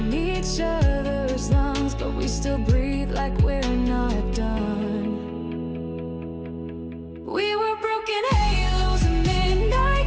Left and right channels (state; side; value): identical; both; correlation 1.00